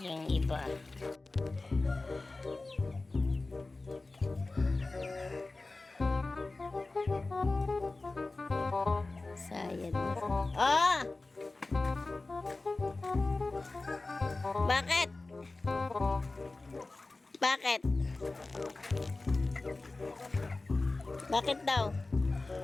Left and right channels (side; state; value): right; quieter; 3.3 dB